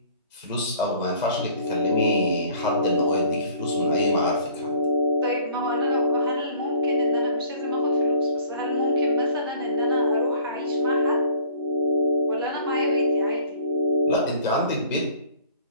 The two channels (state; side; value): inverted; both; correlation -0.53